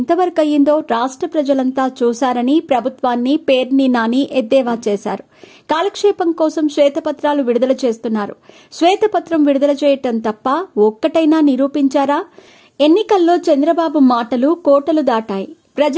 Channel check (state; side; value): identical; both; correlation 1.00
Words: అయ్యిందో రాష్ట్ర ప్రజలంతా చూశారని ప్రభుత్వాన్ని పేర్ని నాని ఎద్దేవా చేశారు. కాలక్షేపం కోసం శ్వేతపత్రాలు విడుదల చేస్తున్నారు. శ్వేతపత్రం విడుదల చేయటం తప్ప ఒక్కటైనా నిరూపించారా? ఎన్నికల్లో చంద్రబాబు మాటలు కోటలు దాటాయి.